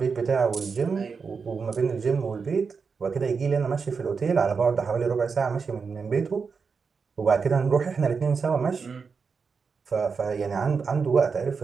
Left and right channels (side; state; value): left; quieter; 5.3 dB